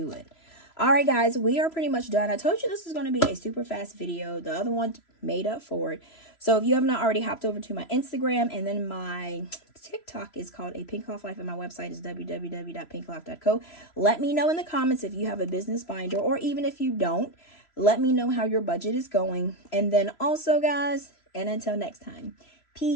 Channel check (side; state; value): right; late; 3.0 ms